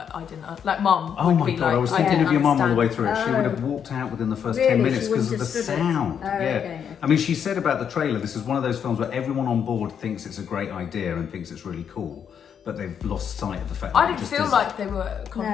I didn't, like Mum. Oh would my be God, like, I was I thinking didn't of your mum all the way understand. through it. She would have walked out within the first Really? 10 minutes She because of wouldn't the have stood it? sound. Oh, Yeah. okay. I mean, she said about the trailer, this is one of those films where everyone on board thinks it's a great idea and thinks it's really cool, but they've lost sight of the fact that I it didn't just feel isn't. like they were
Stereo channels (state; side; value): quieter; right; 7.9 dB